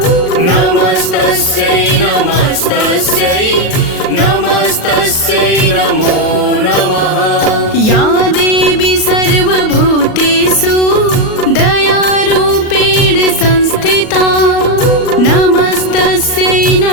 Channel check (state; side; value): late; right; 38 ms